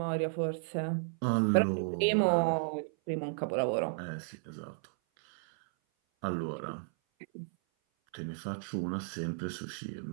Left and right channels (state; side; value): silent; left; 56 dB below the other